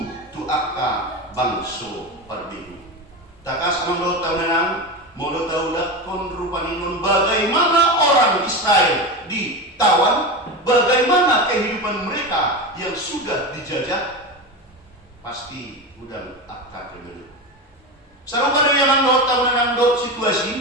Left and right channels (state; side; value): normal; both; correlation 0.22